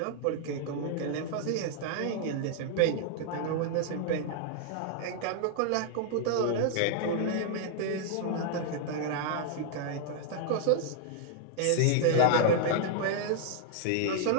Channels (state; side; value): different; both; correlation -0.01